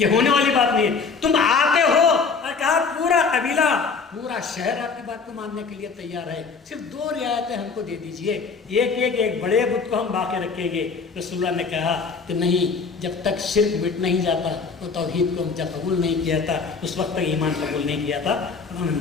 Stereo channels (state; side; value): quieter; right; 5.0 dB